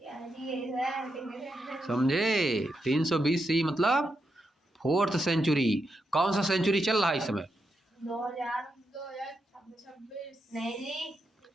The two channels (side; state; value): both; normal; correlation 0.84